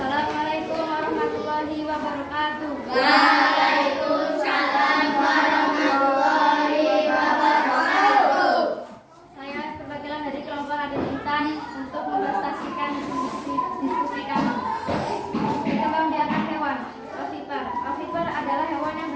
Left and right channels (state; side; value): identical; both; correlation 1.00